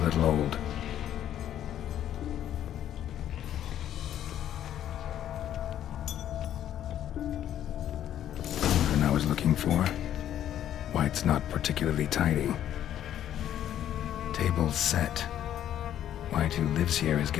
old. Cauldron I was looking for. White's not particularly tidy. Table's set. White who lives here is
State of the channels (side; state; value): right; quieter; 11.0 dB